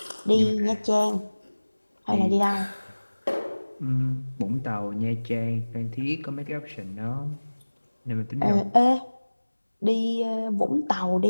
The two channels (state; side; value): inverted; both; correlation -1.00